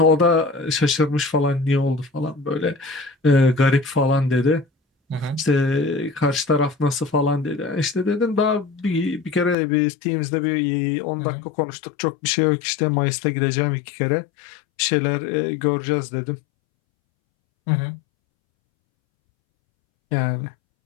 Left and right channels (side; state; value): right; drops out; at 9.6 s